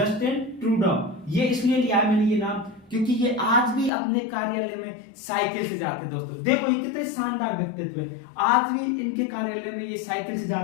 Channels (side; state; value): right; drops out; at 3.9 s